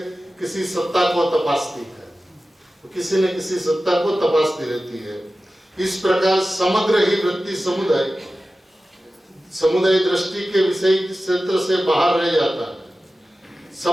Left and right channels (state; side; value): normal; both; correlation 0.95